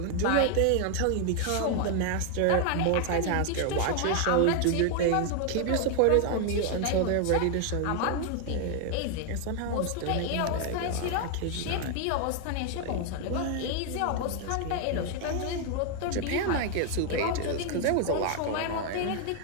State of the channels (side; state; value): both; different; correlation 0.00